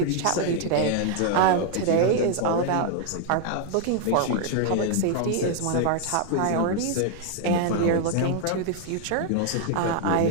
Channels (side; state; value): both; different; correlation 0.00